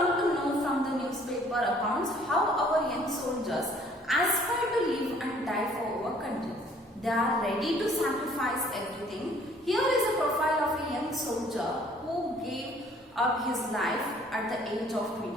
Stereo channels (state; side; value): normal; both; correlation 0.58